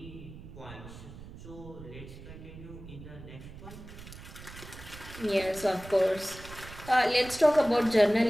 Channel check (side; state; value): right; noise; rumble, 15 dB below the sound